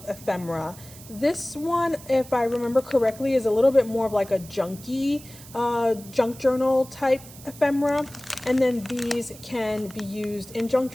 ephemera. This one, if I remember correctly, is a little bit more of like a junky junk journal type ephemera. And then these can be used in junk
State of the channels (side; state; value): right; noise; hiss, 18 dB below the sound